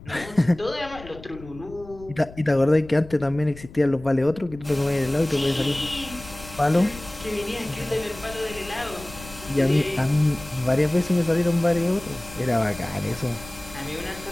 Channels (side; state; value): left; noise; rumble, 17 dB below the sound